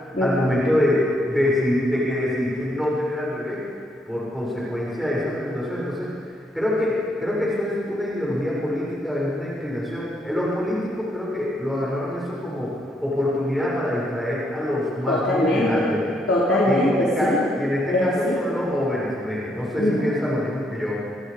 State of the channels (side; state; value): both; normal; correlation 0.74